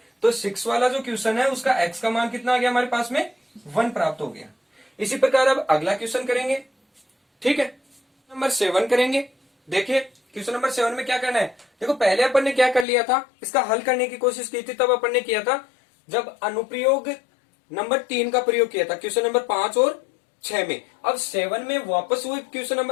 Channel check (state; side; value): drops out; right; at 12.9 s